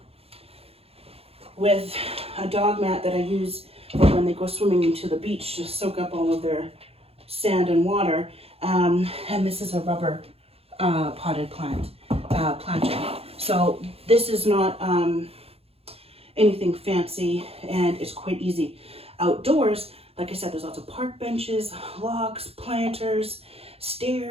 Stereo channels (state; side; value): late; left; 0.29 ms